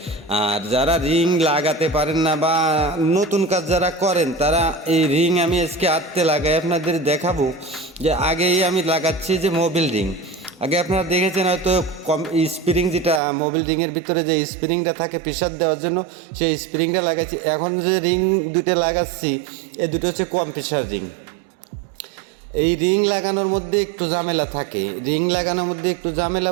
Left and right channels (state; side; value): drops out; left; at 13.2 s